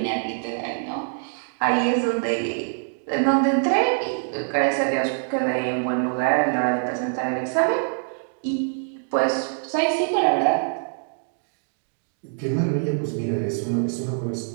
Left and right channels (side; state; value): left; silent; digital silence